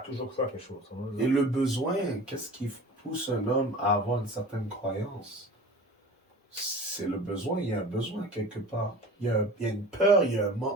cru à quelque chose. Et le besoin, qu'est-ce qui pousse un homme à avoir une certaine croyance? C'est le besoin, il y a un besoin quelque part. Il y a une peur, il y a un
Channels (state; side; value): normal; both; correlation 0.39